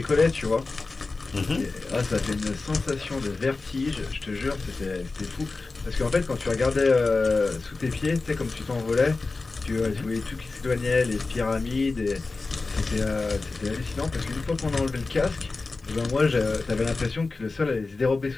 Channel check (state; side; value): quieter; right; 3.7 dB